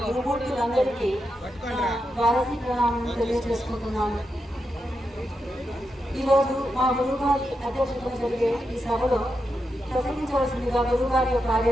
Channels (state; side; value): normal; both; correlation 0.86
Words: గురుమూర్తులందరికీ ద్వాదశి ప్రణామం తెలియజేసుకుంటున్నాను. ఈరోజు మా గురుగారి అధ్యక్షతన జరిగే ఈ సభలో ప్రసంగించవలసిందిగా గురుగారి యొక్క